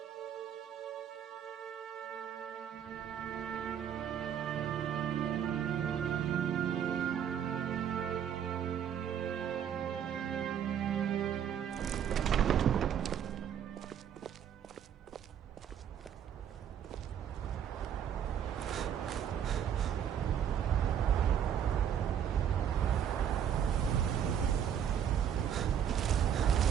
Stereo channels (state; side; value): quieter; left; 9.0 dB